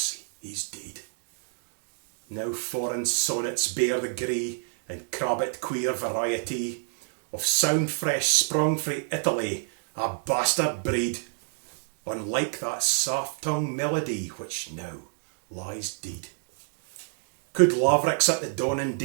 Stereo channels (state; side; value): silent; left; digital silence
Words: he's deed. Now foreign sonnets bear the gree, and crabbit queer variety, of sound fresh sprung frae Italy, a bastard breed, unlike that soft-tongued melody which now lies deed. Could lavricks at the dawning